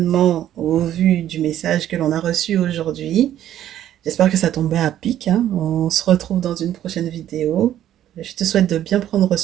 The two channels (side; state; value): left; quieter; 11.7 dB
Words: au vu du message que l'on a reçu aujourd'hui. J'espère que ça tombait à pic, hein. On se retrouve dans une prochaine vidéo. Je te souhaite de bien prendre